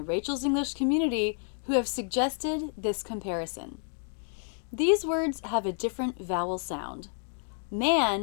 Rachel's English community who have suggested this comparison. These words have a different vowel sound.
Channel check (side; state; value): right; silent; 58 dB below the other